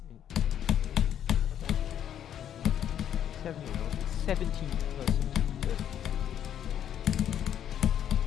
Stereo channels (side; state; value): right; quieter; 9.8 dB